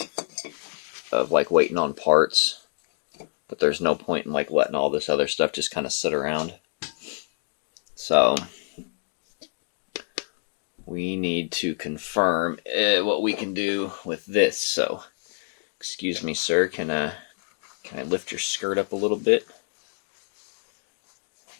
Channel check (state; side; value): silent; right; digital silence